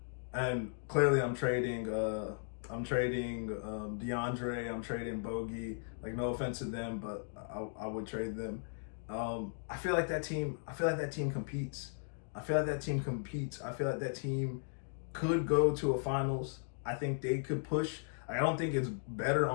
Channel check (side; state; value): right; silent; digital silence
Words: and clearly I'm trading DeAndre, I'm trading Bogey. Like, no offense to them, but I would trade them. I feel like that team competes. I feel like that team could go to a finals. I think they could push. I don't think it's better